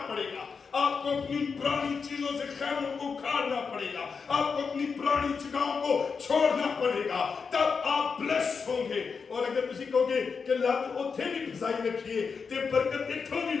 पड़ेगा, आपको अपनी पुरानी चीजों से खैमों को उखाड़ना पड़ेगा, आपको अपनी पुरानी जगहों को छोड़ना पड़ेगा, तब आप ब्लेस होंगे। और अगर किसी कहोगे कि लत उथे भी फसाई रखिए ते बरकत इथों भी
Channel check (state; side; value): quieter; right; 5.5 dB